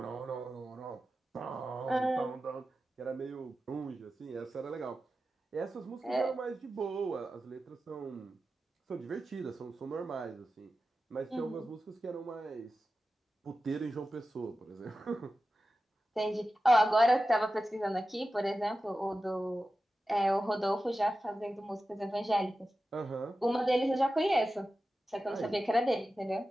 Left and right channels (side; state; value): both; normal; correlation 0.93